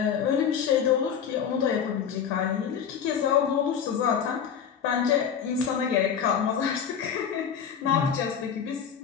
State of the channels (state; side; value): quieter; right; 7.7 dB